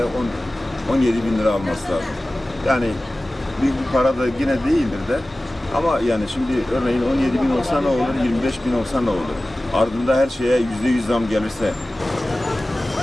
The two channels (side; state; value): both; normal; correlation 0.97